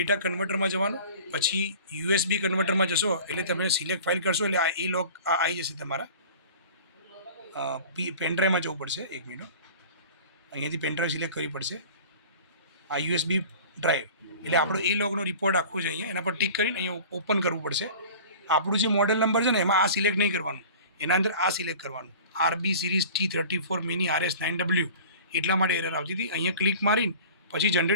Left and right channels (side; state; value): both; inverted; correlation -0.41